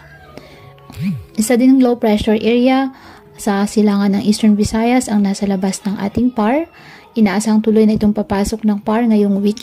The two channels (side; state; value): both; identical; correlation 1.00